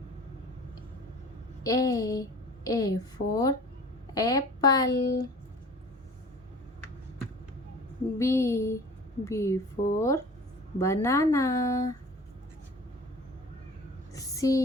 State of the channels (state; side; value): normal; both; correlation 0.44